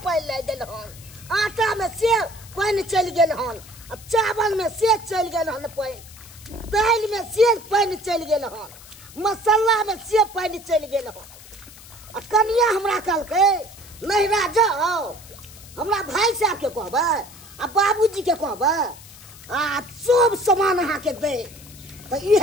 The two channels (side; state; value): left; noise; hiss, 19 dB below the sound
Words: पानी लाग गेल हन आटा में से पानी चल गेल हन चावल में से चल गेल हन पानी दाल में से पानी चल गेल हन मसाला में से पानी चल गेल हन कनिया हमरा कहलकै नहिरा जाओ हमरा भाई साहब के कहबै आ बाबूजी के कहबै आ सब सामान अहाँ के दे तो